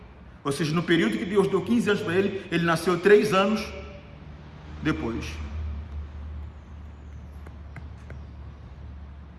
Ou seja, no período que Deus deu 15 anos para ele, ele nasceu 3 anos depois.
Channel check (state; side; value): identical; both; correlation 1.00